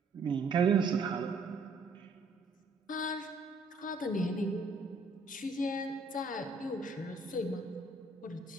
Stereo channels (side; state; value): left; quieter; 3.2 dB